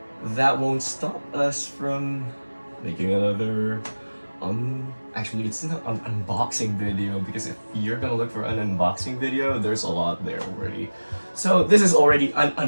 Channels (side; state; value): both; inverted; correlation -1.00